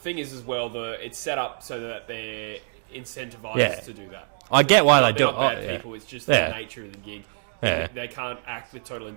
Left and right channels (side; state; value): left; silent; digital silence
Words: is as well, it's set up so that they're incentivized to do that. I get why they do it. They're not bad people, it's just the nature of the gig. They can't act with total